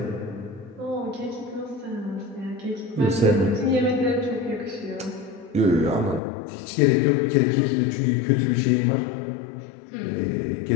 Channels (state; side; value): drops out; right; at 6.2 s